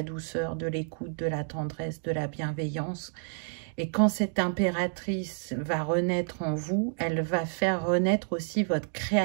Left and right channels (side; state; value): left; silent; digital silence